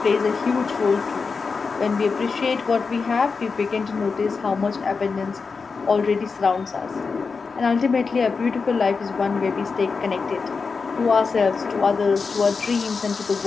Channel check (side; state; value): right; quieter; 4.9 dB